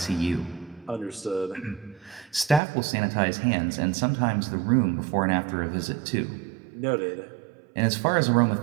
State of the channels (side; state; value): left; drops out; at 2.6 s